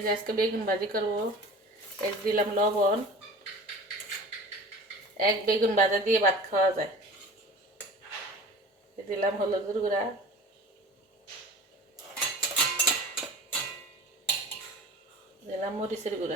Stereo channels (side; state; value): both; normal; correlation 0.40